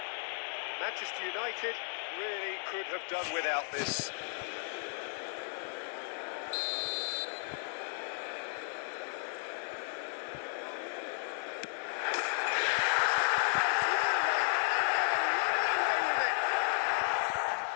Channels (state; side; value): silent; right; 55 dB below the other